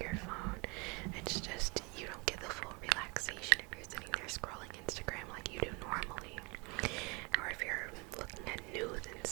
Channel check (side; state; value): left; quieter; 29.2 dB